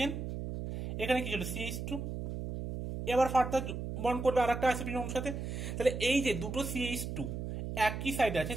এখানে কি ছিল CH2, এবার ফার্দার বন্ড করবে আর একটা আইসোপ্রিন অণুর সাথে। তাহলে এই যে দুটো CH2 একই সাইডে আছে,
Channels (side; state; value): right; noise; hum, 5 dB below the sound